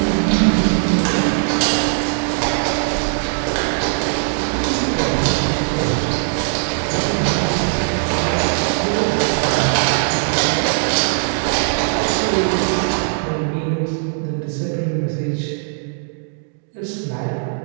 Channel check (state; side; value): silent; left; 66 dB below the other